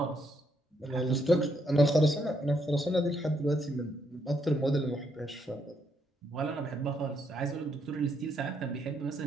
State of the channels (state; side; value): normal; both; correlation 0.75